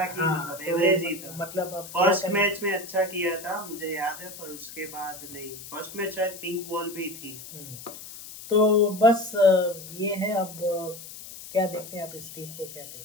ही, हाँ, मतलब तो एवरेज ही था। मतलब अब क्या फर्स्ट करें। मैच में अच्छा किया था मुझे याद है, पर उसके बाद नहीं। फर्स्ट मैच शायद पिंक बॉल भी थी। तो बस ये है। अब क्या देखते हैं आप इस टीम को, क्या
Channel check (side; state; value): left; noise; hiss, 13 dB below the sound